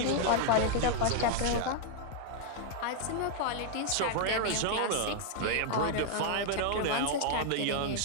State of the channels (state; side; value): different; both; correlation 0.00